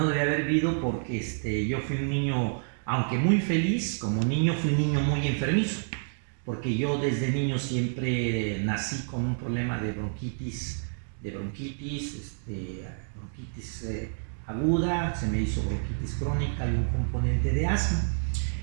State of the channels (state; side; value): silent; left; digital silence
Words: debía haber vivido porque yo fui un niño, aunque muy feliz, como niño fui un niño muy enfermizo, porque yo desde niño siempre nací con un problema de bronquitis aguda, se me hizo bronquitis crónica y un componente de asma.